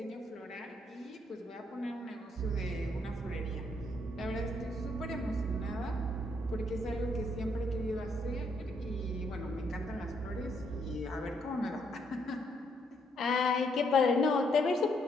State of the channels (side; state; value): both; normal; correlation 0.73